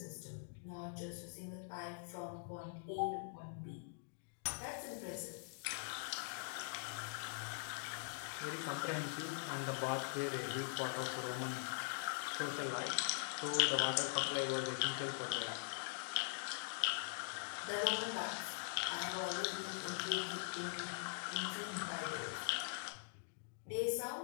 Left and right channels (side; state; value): right; silent; digital silence